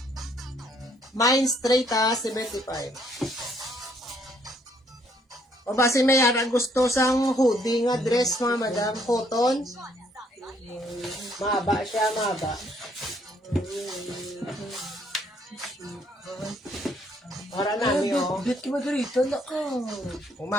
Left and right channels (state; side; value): normal; both; correlation 0.67